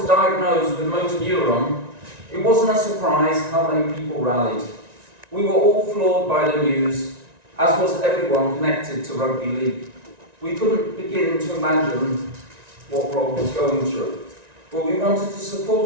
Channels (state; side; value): late; left; 1.9 ms